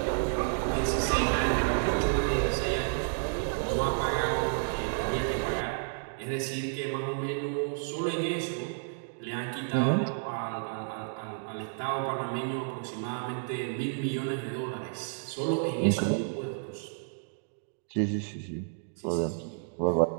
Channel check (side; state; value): left; silent; digital silence